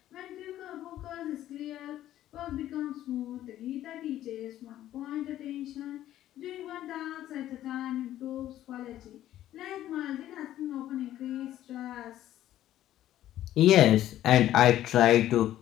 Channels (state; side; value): quieter; right; 12.9 dB